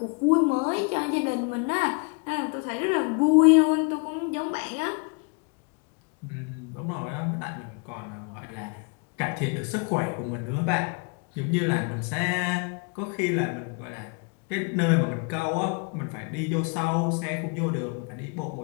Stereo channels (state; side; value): quieter; right; 33.7 dB